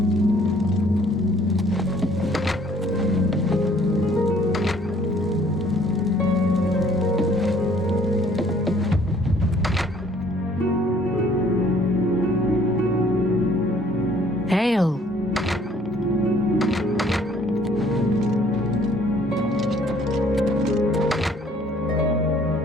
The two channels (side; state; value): both; normal; correlation 0.59